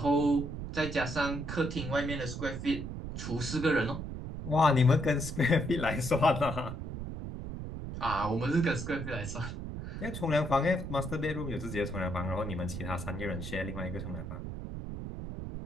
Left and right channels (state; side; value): noise; right; rumble, 7 dB below the sound